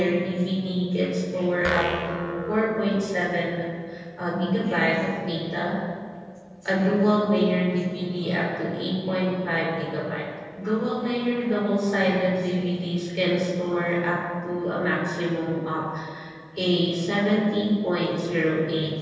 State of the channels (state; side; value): identical; both; correlation 1.00